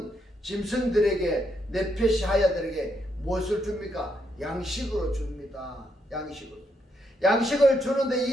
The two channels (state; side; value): normal; both; correlation 0.78